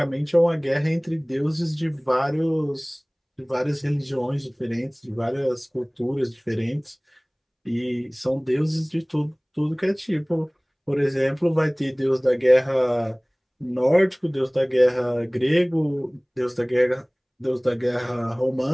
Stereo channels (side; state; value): both; identical; correlation 1.00